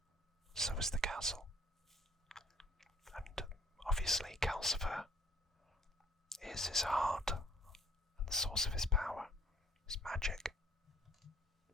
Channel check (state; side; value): normal; both; correlation 0.60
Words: so is the castle. And obviously Calcifer is his heart and the source of his power, his magic.